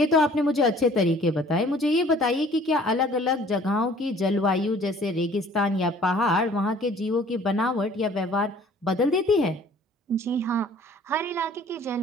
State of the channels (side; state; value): both; normal; correlation 0.53